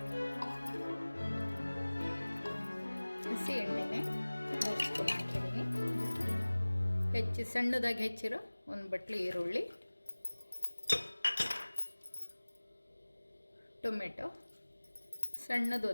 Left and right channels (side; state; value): both; inverted; correlation -1.00